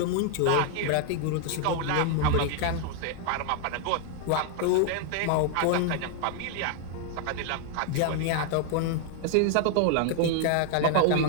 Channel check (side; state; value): both; different; correlation 0.00